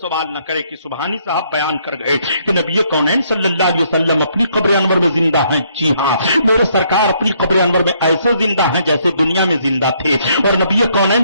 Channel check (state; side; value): inverted; both; correlation -0.69